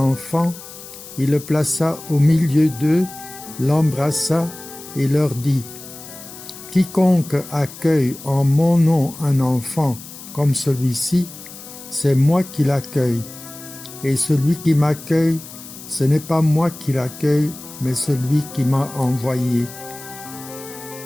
il le plaça au milieu d'eux, l'embrassa et leur dit, « Quiconque accueille en mon nom un enfant comme celui-ci, c'est moi qui l'accueille. Et celui qui m'accueille, ce n'est pas moi qui l'accueille, mais celui qui m'a envoyé.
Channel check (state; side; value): noise; left; hiss, 15 dB below the sound